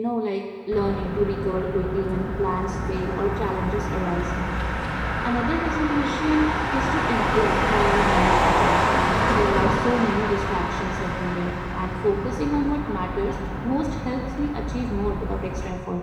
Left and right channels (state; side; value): identical; both; correlation 1.00